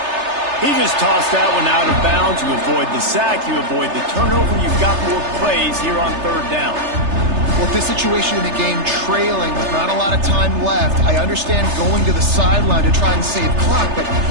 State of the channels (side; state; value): left; late; 3.3 ms